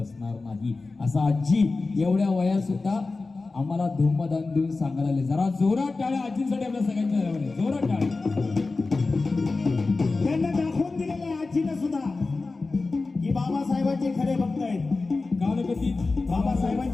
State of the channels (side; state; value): right; quieter; 3.7 dB